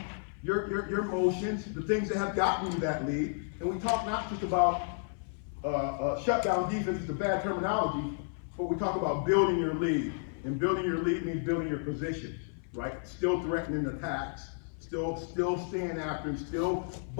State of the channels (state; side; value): silent; right; 56 dB below the other